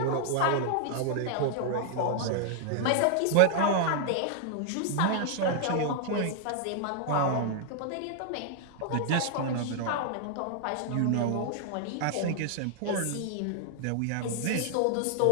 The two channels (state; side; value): different; both; correlation 0.00